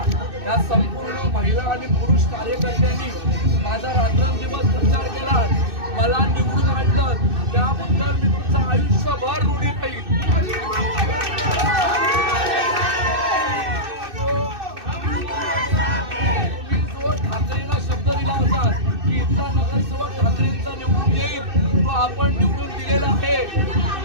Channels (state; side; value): late; left; 2.6 ms